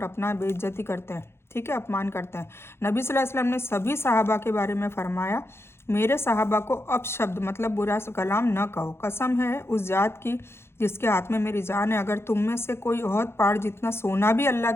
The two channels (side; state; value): right; late; 0.12 ms